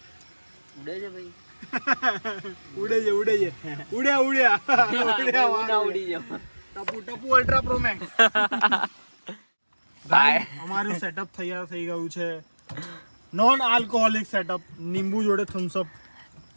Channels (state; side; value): inverted; both; correlation -1.00